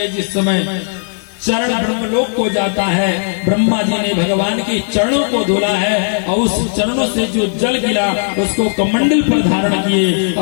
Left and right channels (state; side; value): silent; right; 62 dB below the other